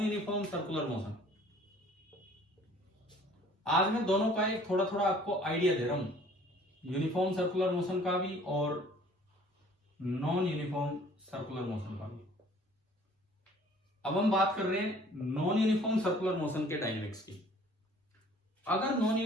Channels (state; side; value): normal; both; correlation 0.53